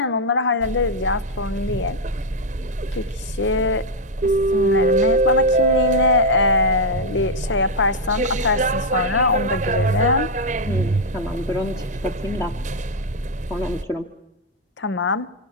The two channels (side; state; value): both; normal; correlation 0.00